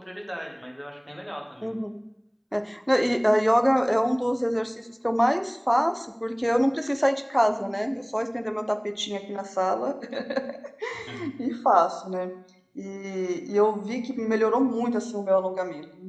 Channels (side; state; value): both; identical; correlation 1.00